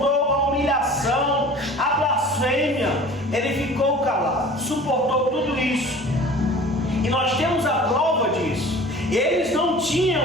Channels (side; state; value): both; normal; correlation 0.43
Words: a humilhação, a blasfêmia. Ele ficou calado, suportou tudo isso. E nós temos a prova disso. Eles não